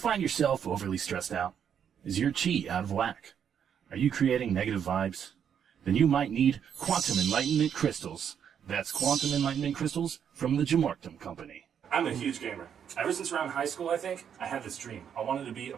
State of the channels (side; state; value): left; quieter; 8.3 dB